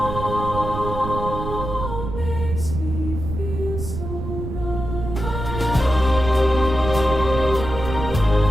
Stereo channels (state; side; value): noise; right; rumble, 6 dB below the sound